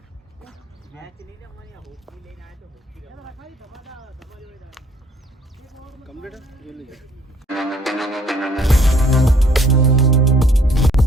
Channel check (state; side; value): normal; both; correlation 0.61